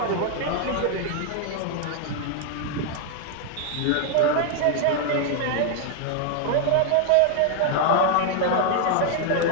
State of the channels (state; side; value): different; both; correlation 0.00